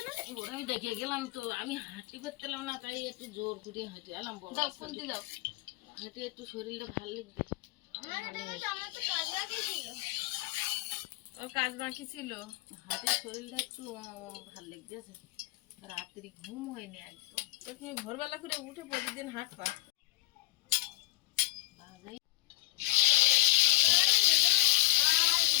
না। আমি দেখে গেলাম তো, আমি হাঁটি করতেলাম না, তাই একটু জোর করে হেঁটে এলাম। দাও, খুন্তি দাও। হেঁটে একটু শরীরটা ভালো লাগবে। ওর কাজ বাকি ছিল। হাতের শরীরটা একটু ভালো লাগতেছে। রাত্রি ঘুম হয়নি একদম। তো তুমি ভোরবেলা করে উঠে প্রতিদিন হাঁটবা। বাবারে,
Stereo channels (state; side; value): quieter; right; 20.2 dB